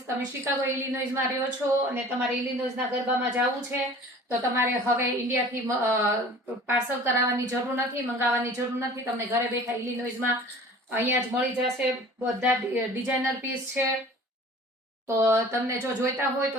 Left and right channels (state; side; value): normal; both; correlation 0.45